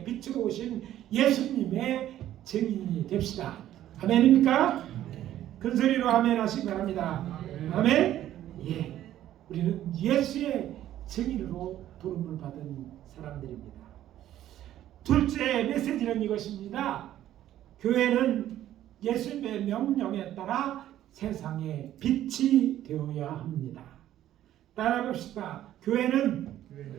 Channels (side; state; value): left; quieter; 12.5 dB